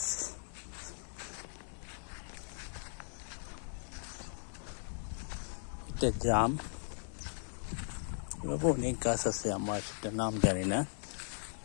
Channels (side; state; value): right; silent; digital silence